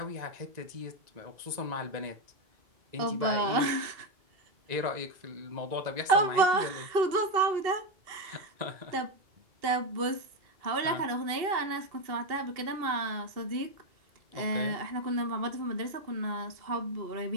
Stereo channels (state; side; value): late; left; 2.7 ms